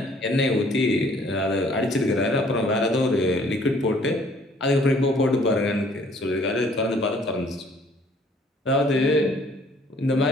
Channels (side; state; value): both; normal; correlation 0.59